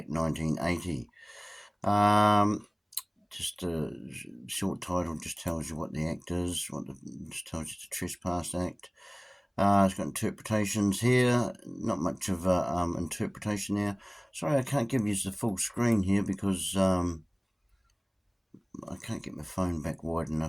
1980. Just a short title just tells you what the act is, just tells you the Trespass Act. It's got interpretations here, not much of a interpretation there. Sorry, I can't give you the full screen here because I can't get my phone back wide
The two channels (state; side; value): identical; both; correlation 1.00